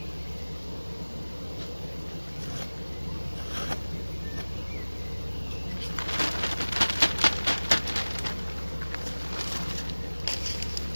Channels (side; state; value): both; inverted; correlation -1.00